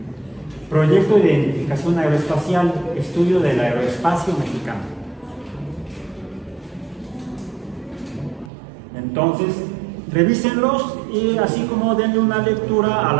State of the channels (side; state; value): left; drops out; at 8.5 s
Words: Proyecto de identificación aeroespacial, estudio del aeroespacio mexicano. Entonces, revísenlos y así como denle una lectura al